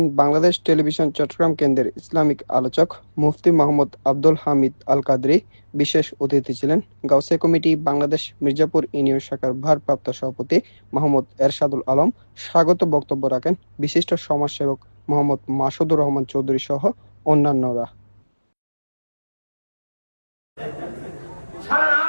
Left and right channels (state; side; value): inverted; both; correlation -1.00